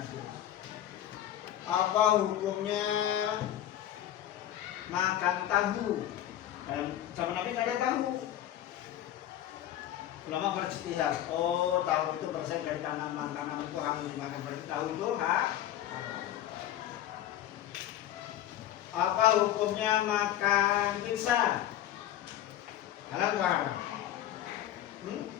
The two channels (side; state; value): right; quieter; 12.2 dB